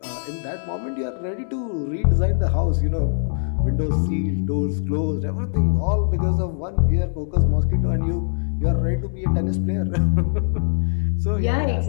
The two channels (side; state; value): right; silent; digital silence